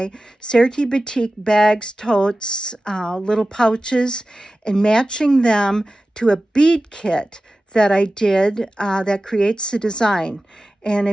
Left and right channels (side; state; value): both; normal; correlation 0.95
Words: Serti Batik bags, totes, little pouches, and matching them to a bead kit that I did that creates the design. And